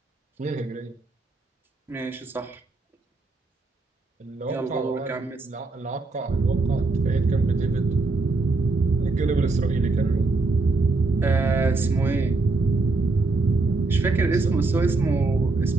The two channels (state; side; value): quieter; left; 3.5 dB